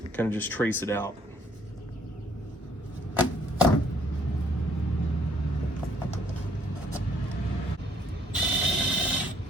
kind of just trace it out.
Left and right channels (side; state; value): both; normal; correlation 0.65